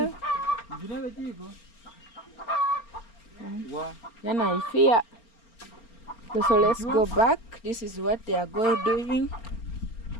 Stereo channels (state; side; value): late; right; 4.4 ms